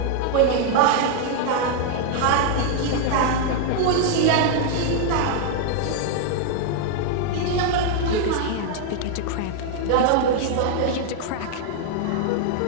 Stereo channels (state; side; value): different; both; correlation 0.00